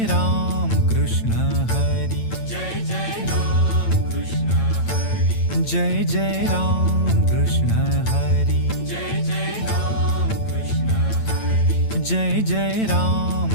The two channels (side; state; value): right; late; 8.9 ms